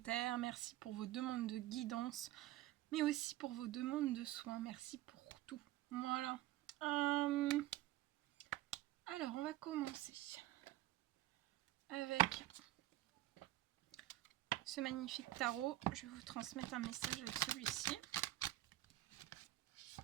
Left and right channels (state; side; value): quieter; left; 15.6 dB